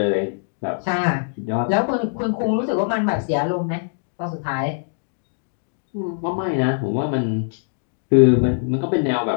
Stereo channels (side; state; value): right; silent; digital silence